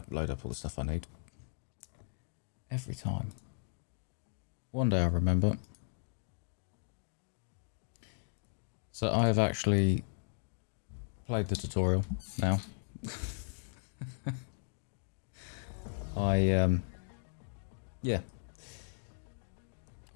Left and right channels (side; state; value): right; silent; digital silence